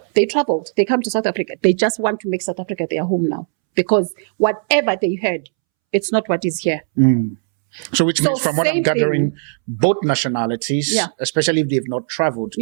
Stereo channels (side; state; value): left; silent; 67 dB below the other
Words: They traveled. They come to South Africa. They just want to make South Africa their home now. Because whatever they heard, it's not what is here. So which means from what I'm gathering, both nationalities, especially if they've not traveled,